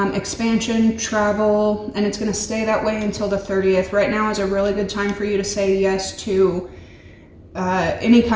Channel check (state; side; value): identical; both; correlation 1.00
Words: expansion, travel, and it's going to stay that way until the 30th. Right now is a really good time for you to say yes to any